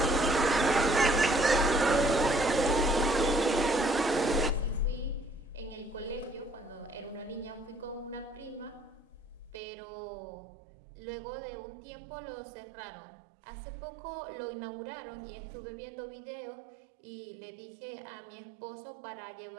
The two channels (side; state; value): left; drops out; at 9.6 s